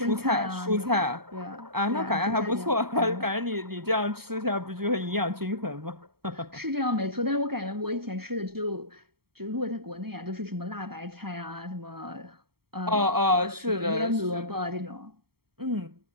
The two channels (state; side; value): late; left; 0.95 ms